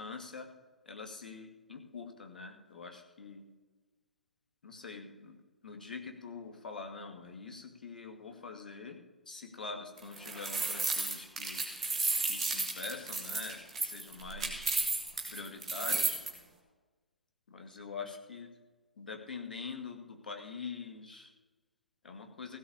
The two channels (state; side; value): normal; both; correlation 0.58